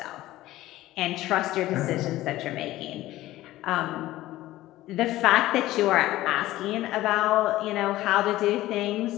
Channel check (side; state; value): right; quieter; 16.0 dB